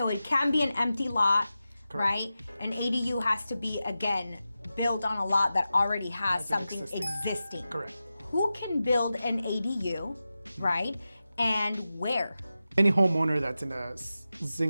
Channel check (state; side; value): inverted; both; correlation -0.93